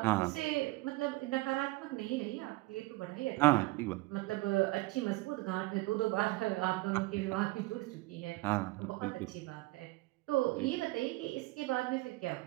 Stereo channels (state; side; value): quieter; left; 21.1 dB